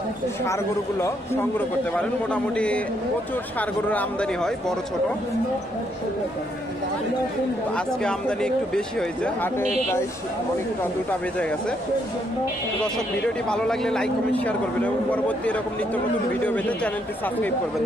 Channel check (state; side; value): normal; both; correlation 0.74